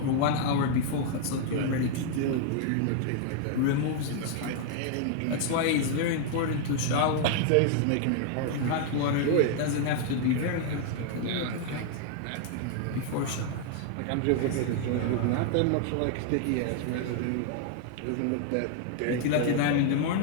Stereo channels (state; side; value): different; both; correlation 0.00